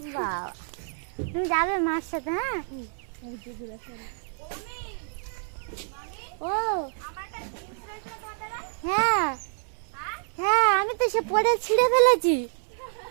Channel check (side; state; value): left; silent; 59 dB below the other